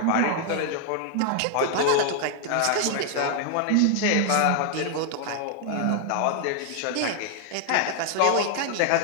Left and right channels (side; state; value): both; different; correlation 0.00